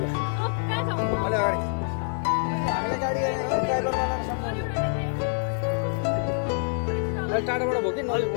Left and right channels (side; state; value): right; silent; 59 dB below the other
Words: टाढाबाट भयो कि